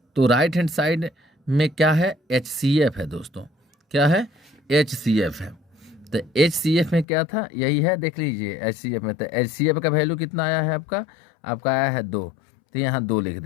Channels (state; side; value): drops out; right; at 7.1 s